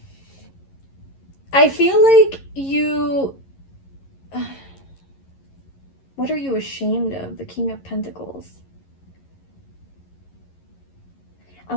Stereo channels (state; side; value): late; right; 11 ms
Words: I feel like you... What are you ashamed of? The King of Pentacles. I